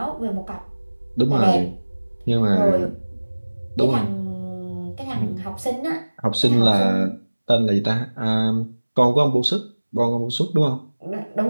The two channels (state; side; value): inverted; both; correlation -1.00